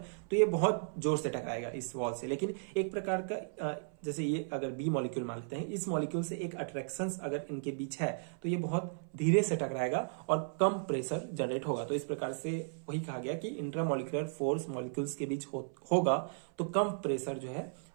तो ये बहुत जोर से टकराएगा इस वॉल से। लेकिन एक प्रकार का जैसे ये अगर बी मॉलिक्यूल मान लेते हैं, इस मॉलिक्यूल से एक अट्रैक्शन अगर इनके बीच है तो ये बहुत धीरे से टकराएगा और कम प्रेशर जनरेट होगा। तो इस प्रकार से वही कहा गया कि इंट्रामॉलिक्यूलर फोर्स मॉलिक्यूल्स के बीच होगा तो कम प्रेशर जो है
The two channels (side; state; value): left; silent; 54 dB below the other